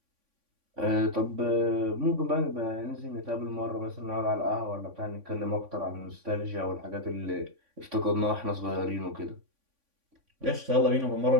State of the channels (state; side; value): late; left; 3.5 ms